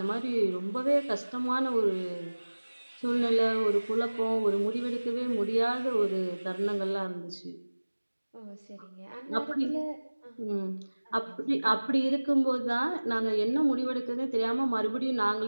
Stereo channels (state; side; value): inverted; both; correlation -1.00